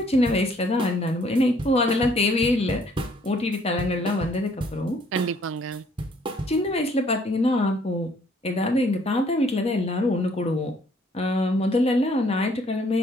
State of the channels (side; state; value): both; normal; correlation 0.63